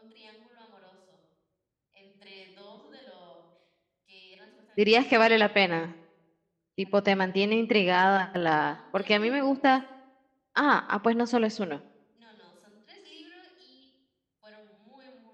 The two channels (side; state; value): both; identical; correlation 1.00